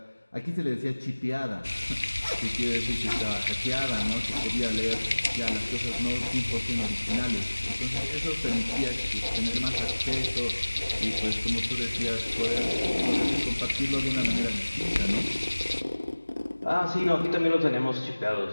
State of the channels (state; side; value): inverted; both; correlation -1.00